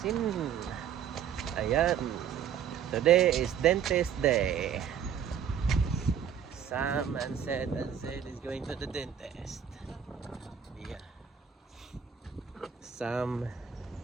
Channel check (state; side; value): quieter; left; 8.3 dB